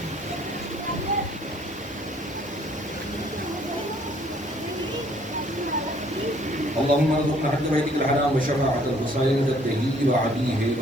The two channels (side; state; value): both; normal; correlation 0.61